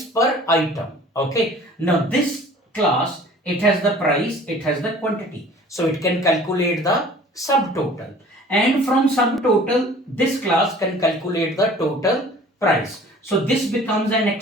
per item. Okay. Now this class, it has the price, it has the quantity. So it can calculate the subtotal. and from subtotal, this class can calculate the total price. So this becomes an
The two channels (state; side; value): normal; both; correlation 0.48